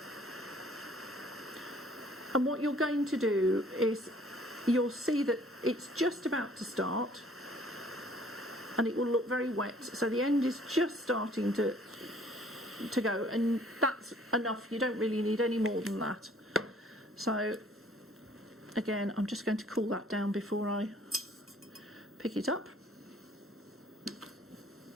And what you're going to do is you'll see that it's just about to start, and it will look very wet. So the end is just starting to go, and that's enough. You don't really need any more than that. So again, I'm just going to cool that down before I pick it up.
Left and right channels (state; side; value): normal; both; correlation 0.57